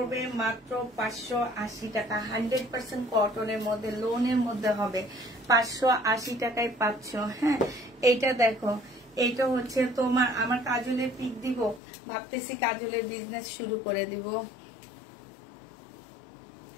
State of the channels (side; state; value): right; drops out; at 11.8 s